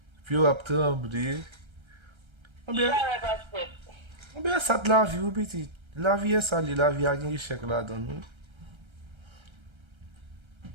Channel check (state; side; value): late; left; 1.3 ms